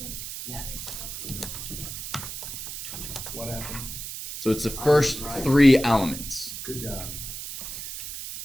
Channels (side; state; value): right; noise; hiss, 8 dB below the sound